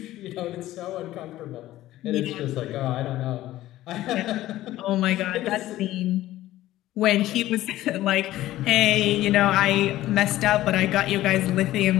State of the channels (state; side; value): quieter; right; 15.1 dB